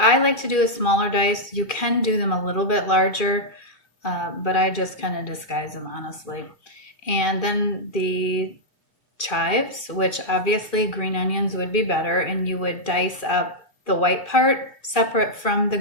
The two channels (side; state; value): right; late; 2.9 ms